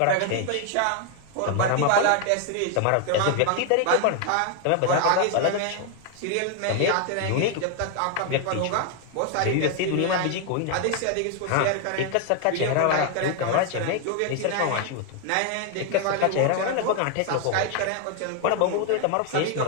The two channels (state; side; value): different; both; correlation 0.01